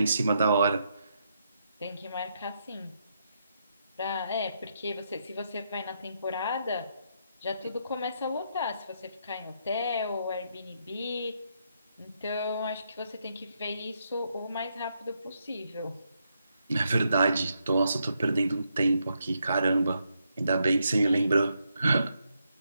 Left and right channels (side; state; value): both; inverted; correlation -0.79